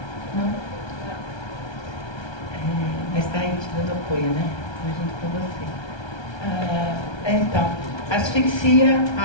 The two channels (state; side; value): late; right; 1.3 ms